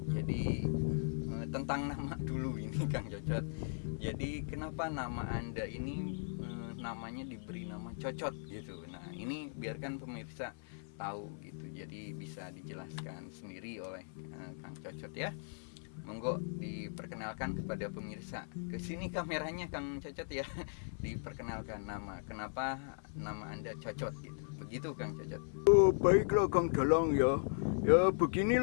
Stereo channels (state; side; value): silent; right; 52 dB below the other